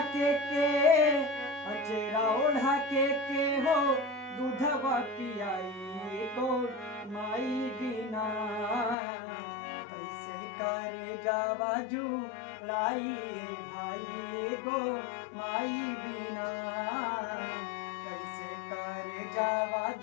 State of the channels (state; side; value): drops out; right; at 9.0 s